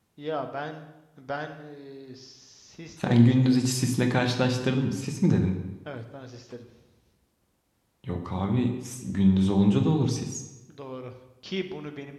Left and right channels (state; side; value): identical; both; correlation 1.00